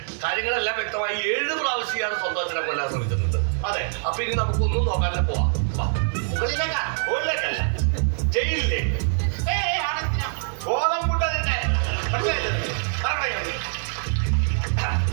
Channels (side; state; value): left; silent; 62 dB below the other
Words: കാര്യങ്ങളെല്ലാം വ്യക്തമായി. 7 പ്രാവശ്യം ഇയാൾ സ്വന്തം അച്ഛനെ കൊല്ലാൻ ശ്രമിച്ചിട്ടുണ്ട്. അതെ. അപ്പൊ ഇനി നമുക്കൊന്നും നോക്കാനല്ല പോവാം. മുകളിലേക്കാണ്. ഓടിലേക്കല്ല, ജയിലിലേക്ക്. ഗോതമ്പുണ്ട തന്നെ.